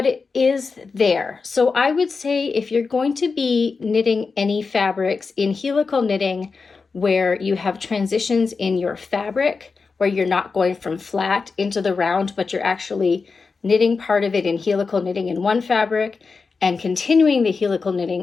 it is there. So I would say if you're going to be knitting any fabrics in helical knitting where you have transitions in your fabric, where you're not going from flat into the round, but you're actually knitting part of it in helical knitting in one fabric and continuing the helical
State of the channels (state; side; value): quieter; right; 4.7 dB